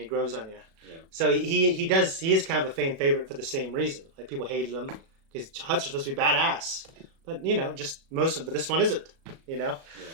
grows on you. Yeah. So he is kind of a fan favorite for the same reason. Like people hated him because huts are supposed to be badass. But, just but this one isn't, Yeah.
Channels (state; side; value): late; left; 37 ms